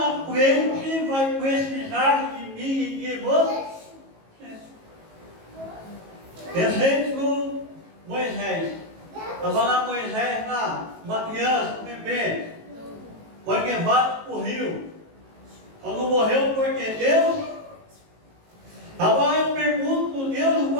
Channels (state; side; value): late; left; 18 ms